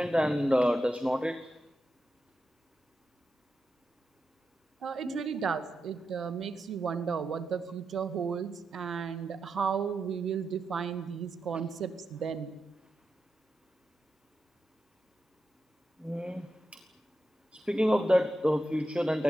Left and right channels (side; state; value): both; normal; correlation 0.88